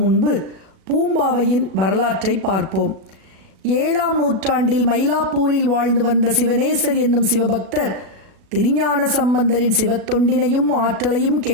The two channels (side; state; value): left; late; 37 ms